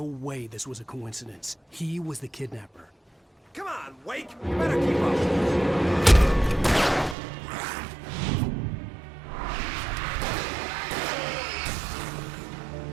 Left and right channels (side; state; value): left; drops out; at 7.2 s